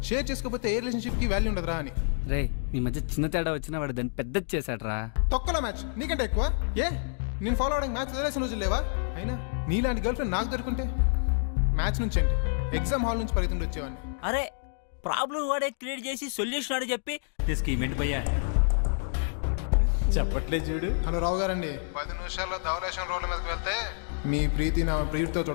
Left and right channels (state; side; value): silent; right; digital silence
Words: షేర్ చేసుకోకపోతే ఏ రిలేషన్షిప్ కి వాల్యూ ఉండదురా అని. రే, మీ మధ్య చిన్న తేడా వచ్చినా వాడు దాన్ని పెద్దది చేశాడ్రా. తొక్కల మ్యాచ్ నీకంటే ఎక్కువ. ఏ నేను ఫాలో అవడానికి మ్యాచ్ వదిలేసిన రోజులు లేవా? అయినా నీలాంటి గర్ల్ ఫ్రెండ్ నాకు దొరుకుంటే మ్యాథ్స్ నుంచి ఏంటి, ఎగ్జామ్ హాల్ నుంచి పరిగెత్తుకుంటూ వచ్చేవాడిని. అరే ప్రాబ్లం వాడే క్రియేట్ చేసి సొల్యూషన్ వాడే చెప్పి స్కీమ్ ఏంటి భయ్యా? చెప్పట్లేదు చూడు. హలో రావు గారండి, 10 నిమిషాల్లో ధవలేశం రోడ్ల మీదకి వెళ్తే మీ ప్రీతి నా ప్రియుడితో